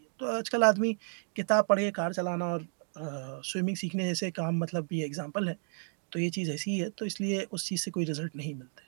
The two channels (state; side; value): silent; left; 56 dB below the other